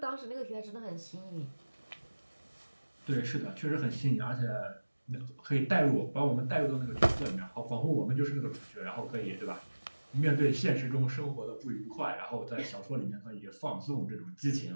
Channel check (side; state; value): both; inverted; correlation -1.00